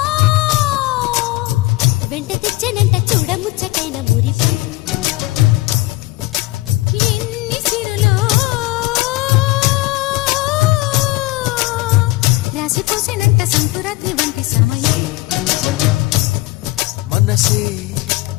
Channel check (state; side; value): quieter; right; 20.2 dB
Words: వెంట తెచ్చనంట చూడముచ్చటైన మురిపం ఎన్ని సిరులో రాసిపోసేనంట సంకురాత్రి వంటి సమయం మనసే